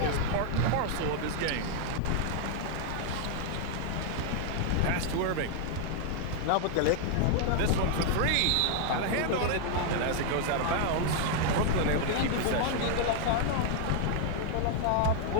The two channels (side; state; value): both; different; correlation 0.00